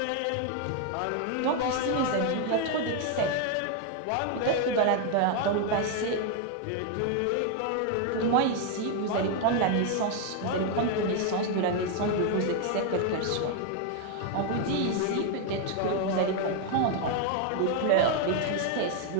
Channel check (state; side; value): different; both; correlation 0.01